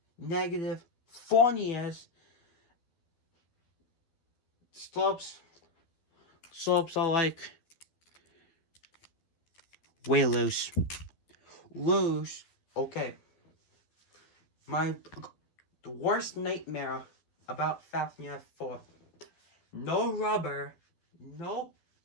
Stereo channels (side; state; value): right; late; 12 ms